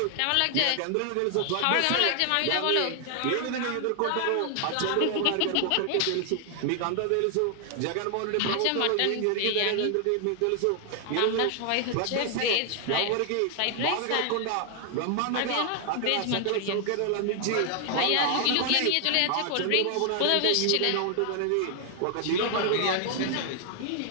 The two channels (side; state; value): both; different; correlation 0.00